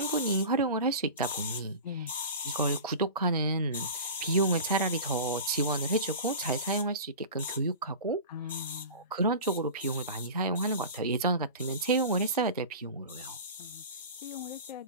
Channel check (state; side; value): inverted; both; correlation -0.33